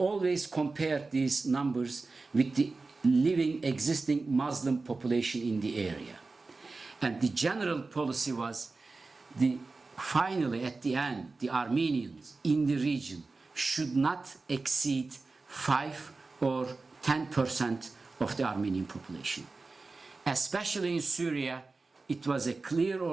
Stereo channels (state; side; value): quieter; left; 3.8 dB